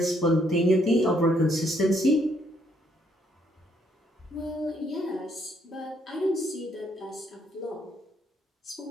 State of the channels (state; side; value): normal; both; correlation 0.70